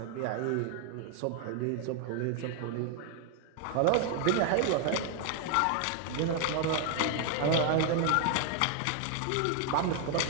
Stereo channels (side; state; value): both; different; correlation 0.00